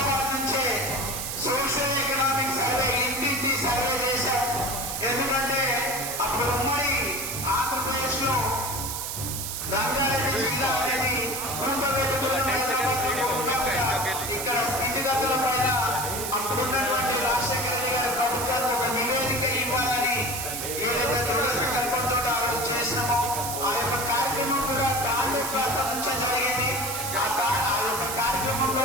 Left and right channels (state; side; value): noise; right; hiss, 4 dB below the sound